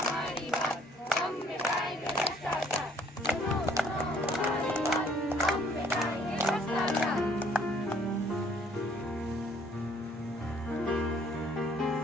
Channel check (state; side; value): normal; both; correlation 0.61